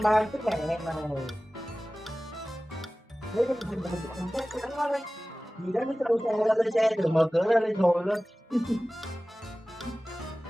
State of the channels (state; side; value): normal; both; correlation 0.97